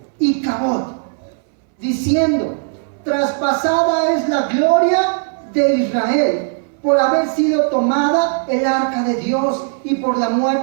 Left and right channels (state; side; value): silent; left; 66 dB below the other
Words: Icabod, diciendo: traspasada es la gloria de Israel por haber sido tomada el arca de Dios y por la